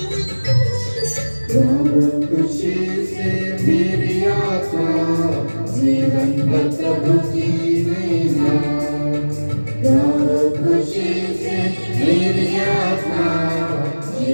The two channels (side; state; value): both; inverted; correlation -1.00